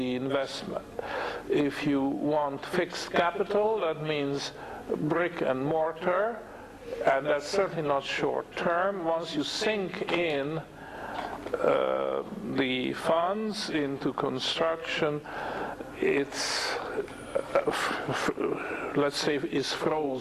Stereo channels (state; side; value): identical; both; correlation 1.00